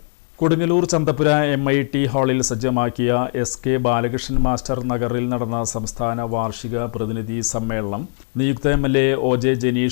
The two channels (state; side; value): silent; right; digital silence